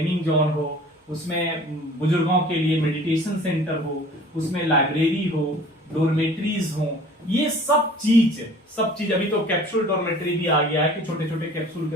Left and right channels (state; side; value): normal; both; correlation 0.47